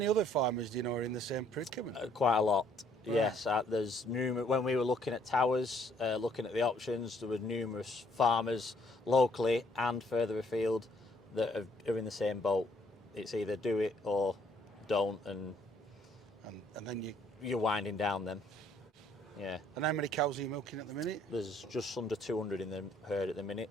other farmers do you know are in the same predicament? Quite a lot. Right. Yes, there's numerous. When we were looking at towers, looking at the options, there were numerous farmers locally and further afield that are in the same boat. It's either do it or don't, and then you're winding down them. Yeah. And how many cows are you milking at the minute? There's just under 200 in the herd at the minute,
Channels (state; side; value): normal; both; correlation 0.65